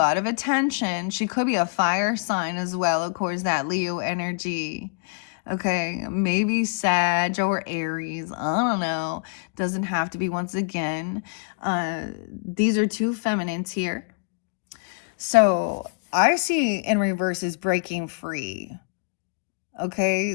of attention. She could be a fire sign as well, of course, that Leo energy. Okay, maybe Sag or Aries. I don't know. Doesn't have to be once again. These are two feminines here. So I see in reverse is breaking free.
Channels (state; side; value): quieter; right; 38.6 dB